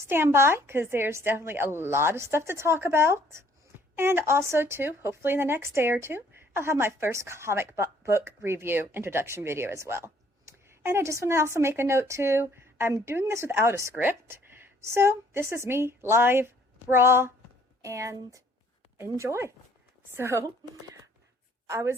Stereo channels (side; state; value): both; normal; correlation 0.61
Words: by, because there's definitely a lot of stuff to talk about. And also, too, hopefully in the next day or two, I'll have my first comic book review introduction video as well. And I just want to also make a note too, I'm doing this without a script, so this is me live, raw, and enjoy. So I